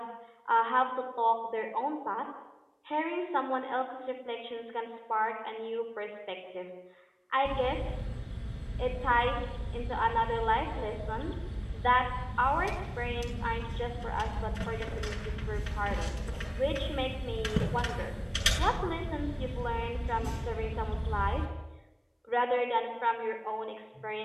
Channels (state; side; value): identical; both; correlation 1.00